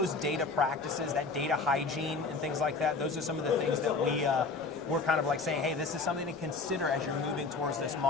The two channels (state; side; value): quieter; right; 4.0 dB